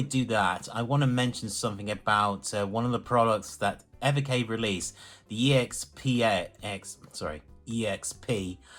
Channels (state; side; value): identical; both; correlation 1.00